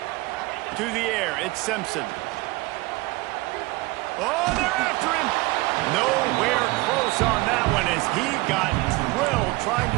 To the air, it's Simpson. Oh, they're after him. Nowhere close on that one as he got drilled trying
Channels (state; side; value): quieter; left; 21.9 dB